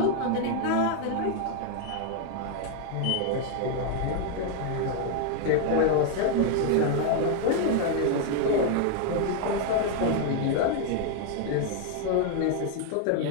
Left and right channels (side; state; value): both; different; correlation 0.00